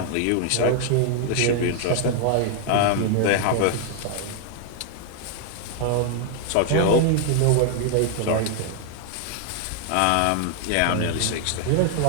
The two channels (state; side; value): different; both; correlation 0.00